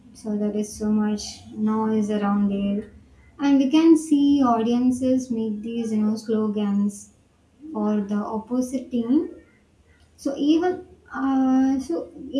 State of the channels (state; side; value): identical; both; correlation 1.00